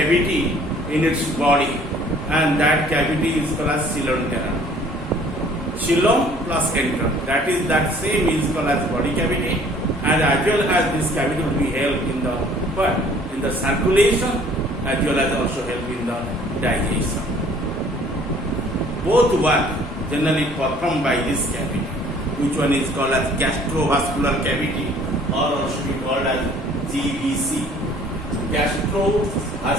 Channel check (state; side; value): normal; both; correlation 0.55